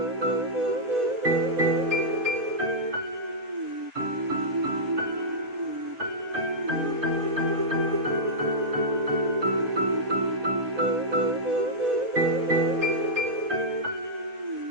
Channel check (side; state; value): left; late; 4.1 ms